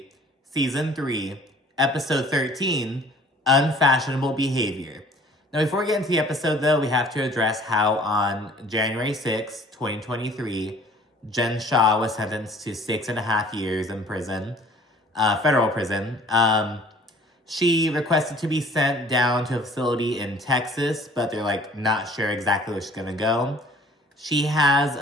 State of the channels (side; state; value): both; normal; correlation 0.52